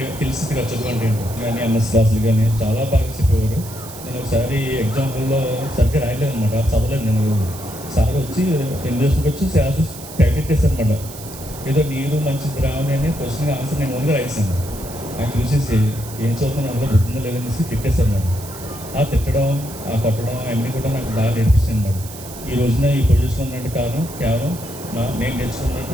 తెలిసింది కదా చదువు అంటే ఏంటో. కానీ ఎంఎస్ క్లాసులు కానీ చాలా బాగా చెప్పేవారు. నేను ఒకసారి ఎగ్జాంపుల్లో సరిగ్గా రాయలేదు అనమాట, చదవలేదు. నేను సార్ వచ్చి ఇంగ్లీష్కి వచ్చి ప్రాక్టీస్ చేశాను అనమాట. ఏదో నీరు మంచి ద్రావణి అనే క్వశ్చన్ ఆన్సర్ నేను ఓన్గా రాయిస్తాను. ఆయన చూసేసి ఏం చదువుతున్నా అందులో గుర్తుందో లేదనేసి తిట్టేశారు అన్నమాట. ఆ తిట్టడం, ఆ కొట్టడం అన్నీ కూడా నాకు బాగా నేర్పిస్తుంది అన్నమాట. ఈ రోజున ఈ పొజిషన్ ఉన్నట్టు కారణం కేవలం నేను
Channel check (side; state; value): right; noise; hiss, 14 dB below the sound